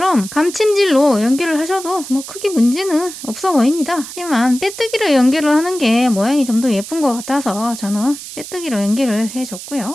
감침질로 연결을 하셔도 뭐 크게 문제는 없어 보입니다. 하지만 빼뜨기로 연결을 하는 게 모양이 좀 더 예쁜 것 같아서 저는 빼뜨기로 연결을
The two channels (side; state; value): right; noise; hiss, 12 dB below the sound